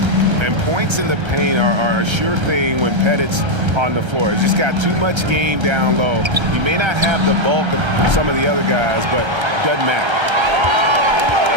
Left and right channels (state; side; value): late; left; 1.3 ms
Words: And points in the paint are a sure thing when Pettit's on the floor. He's just got too much game down low. He may not have the bulk of some of the other guys, but doesn't matter.